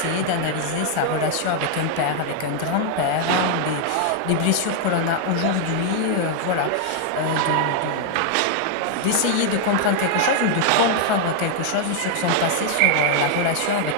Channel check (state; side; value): different; both; correlation 0.00